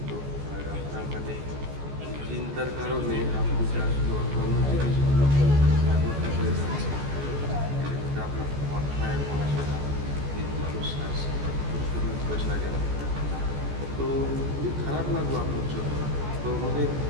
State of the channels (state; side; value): late; left; 14 ms